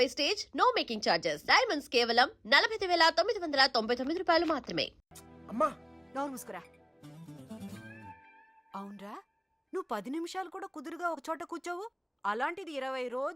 no making charges. Diamonds కేవలం 49,999 రూపాయలు మాత్రమే. అమ్మా నోరు ముసుకురా. అవునరా, నువ్వు 10 నిమిషాలు కూడా కుదురుగా ఒక చోట కూర్చోవు. అలాంటిది 20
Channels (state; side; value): identical; both; correlation 1.00